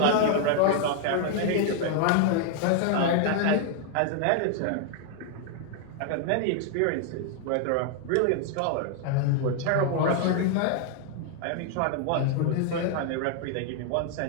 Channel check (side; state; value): both; different; correlation 0.00